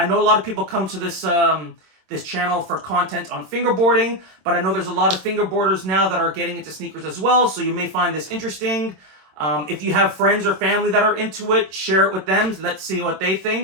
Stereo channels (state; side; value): late; left; 27 ms